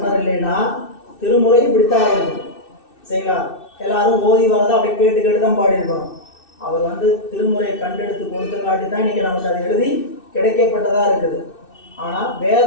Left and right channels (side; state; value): right; late; 2.6 ms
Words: இல்லைன்னா திருமுறை இப்படித்தான் ஆயிருக்கும். சரிங்களா? எல்லாரும் ஓதி வரதை அப்படி கேட்டு தான் பாடியிருக்கணும். அவர் வந்து திருமுறையை கண்டெடுத்து கொடுத்தங்காட்டி தான் இன்னைக்கு நமக்கு அது எழுதி கிடைக்கப்பட்டதா இருக்குது. ஆனால்